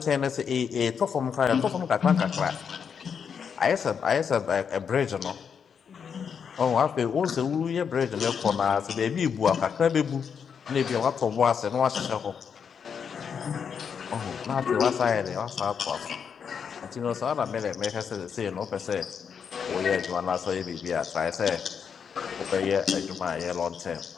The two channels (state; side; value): quieter; right; 6.9 dB